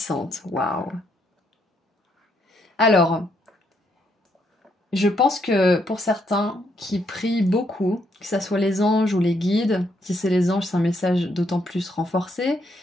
Waouh. Alors, je pense que pour certains qui prient beaucoup, que ce soit les anges ou les guides, si c'est les anges, c'est un message d'autant plus renforcé,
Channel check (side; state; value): both; normal; correlation 0.74